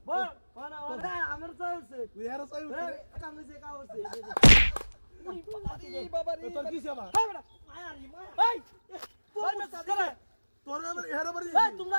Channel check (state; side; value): inverted; both; correlation -1.00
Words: বল ওনা ওনা আমার চাইছে তুই এর চাই কামে কা হচ্ছে এই বাবা রে তোর কি সেবা এই বেটা মায়ারি মায়া এই তোর মে সাদরে তোর আবার এর বাড়ি এই তোমরা